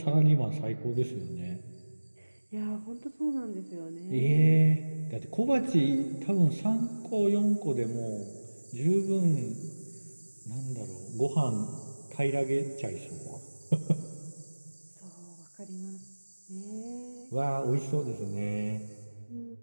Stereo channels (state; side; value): inverted; both; correlation -1.00